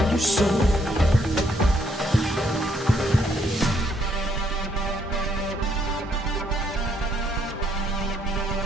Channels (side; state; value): both; normal; correlation 0.71